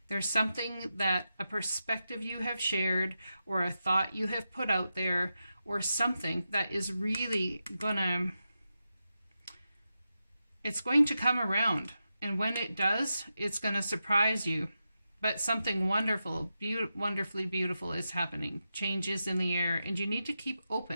There's something that a perspective you have shared, or a thought you have put out there, or something that is really it's going to come around. And when it does, it's going to surprise you. But something wonderful, wonderfully beautiful is happening. Changes in the air. And you need to keep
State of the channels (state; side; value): inverted; both; correlation -0.89